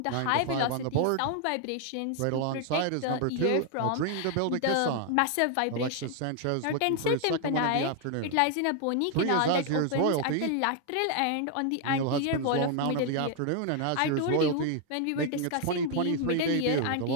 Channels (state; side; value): different; both; correlation 0.00